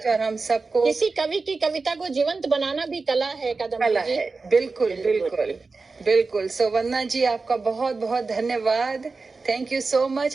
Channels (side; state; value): left; quieter; 4.1 dB